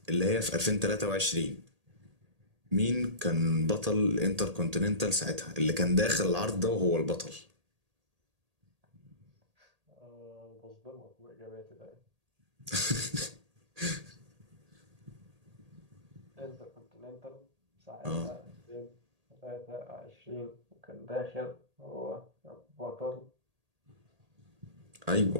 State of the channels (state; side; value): late; left; 1.8 ms